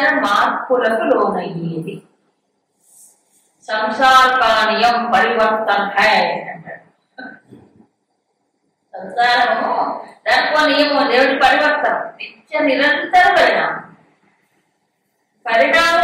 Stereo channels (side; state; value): both; identical; correlation 1.00